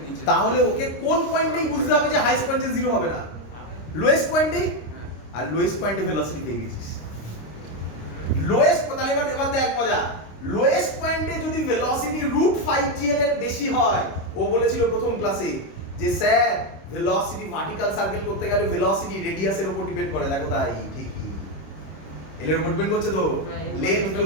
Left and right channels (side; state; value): right; late; 26 ms